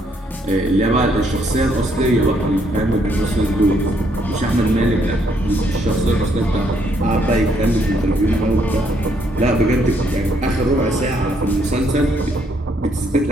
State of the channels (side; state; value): both; normal; correlation 0.71